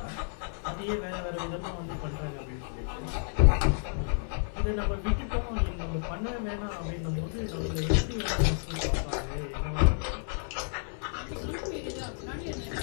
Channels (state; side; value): silent; right; 57 dB below the other